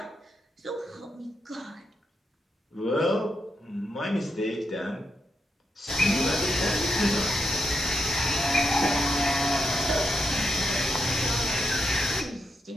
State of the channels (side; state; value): both; normal; correlation 0.83